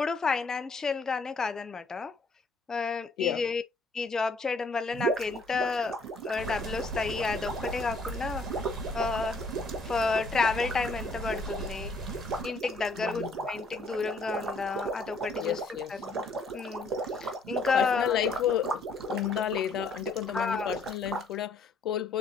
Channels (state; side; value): quieter; right; 3.4 dB